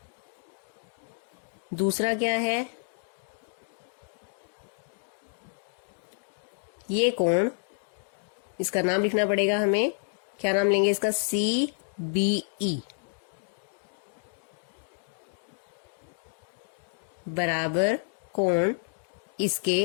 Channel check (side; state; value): right; silent; digital silence